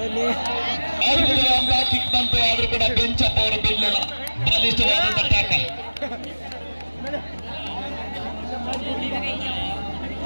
ಕಿಕ್ ಬಂತು. ಆದ್ರೂ ಕೂಡ ಬೆಂಚಪ್ಪ ಅವರು ಬೀಳಲಿಲ್ಲ. ಬಲಿಷ್ಠವಾದಂತ ಟ್ಯಾಕಲ್.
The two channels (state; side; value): inverted; both; correlation -1.00